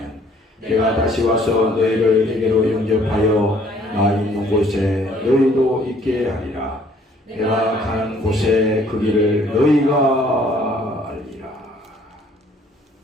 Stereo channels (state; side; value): normal; both; correlation 0.60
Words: 내가 다시 와서 너희를 내게로 영접하여 나 있는 곳에 너희도 있게 하리라. 내가 가는 곳에 그 길을 너희가 알리라.